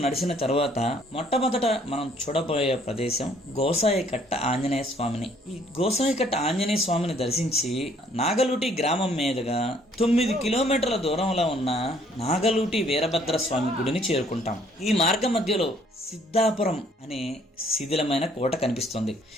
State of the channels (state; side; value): normal; both; correlation 0.62